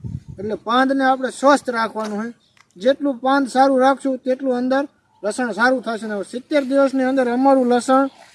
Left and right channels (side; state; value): both; identical; correlation 1.00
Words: એટલે પાંદને આપણે સ્વસ્થ રાખવાનું હોય. જેટલું પાંદ સારું રાખશું તેટલું અંદર લસણ સારું થશે. ને 70 દિવસની અંદર અમારું લસણ